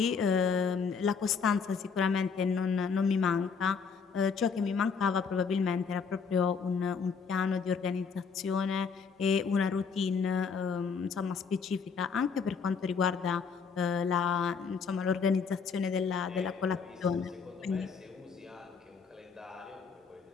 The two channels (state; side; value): quieter; right; 5.7 dB